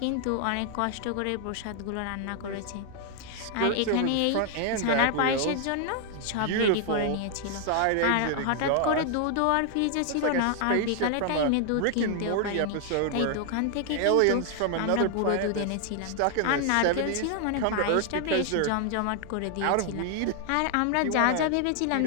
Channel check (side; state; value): both; different; correlation 0.00